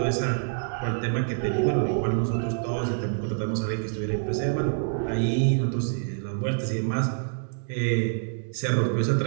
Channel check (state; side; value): silent; left; digital silence